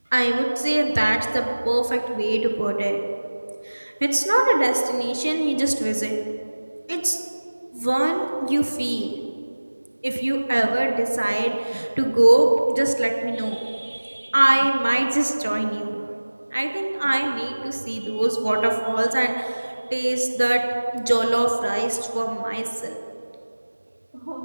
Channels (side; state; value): both; inverted; correlation -1.00